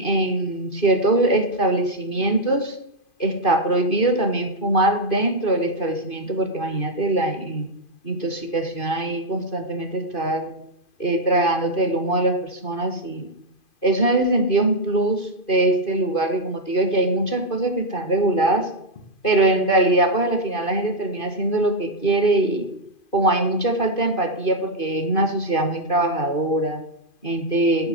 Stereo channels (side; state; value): right; late; 2.5 ms